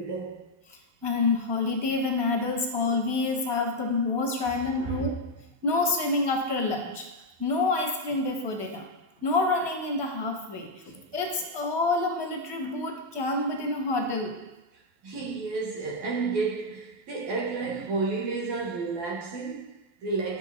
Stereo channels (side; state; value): left; late; 12 ms